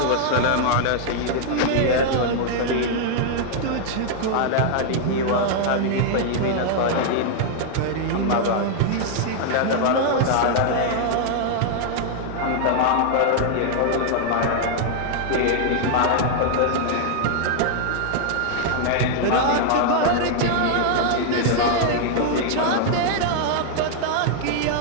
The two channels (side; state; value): both; different; correlation -0.01